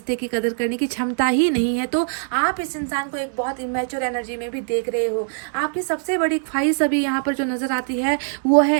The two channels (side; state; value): left; silent; 64 dB below the other